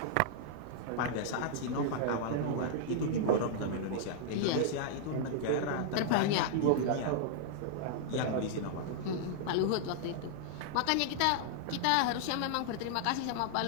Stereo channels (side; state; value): both; different; correlation -0.01